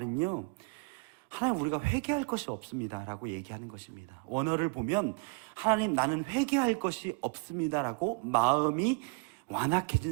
하나님 우리가 회개할 것이 없습니다 라고 얘기하는 것입니다. 원어를 보면 하나님 나는 회개할 것이 없습니다 라고 마음이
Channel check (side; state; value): left; quieter; 31.4 dB